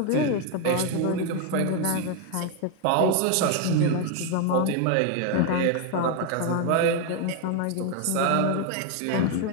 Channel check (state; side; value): different; both; correlation 0.01